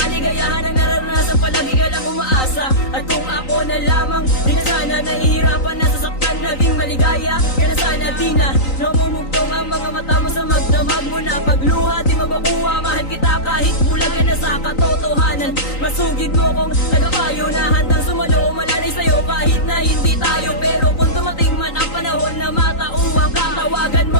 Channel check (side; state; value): right; late; 3.9 ms